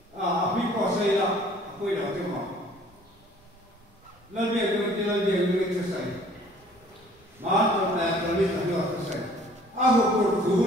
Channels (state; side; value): normal; both; correlation 0.55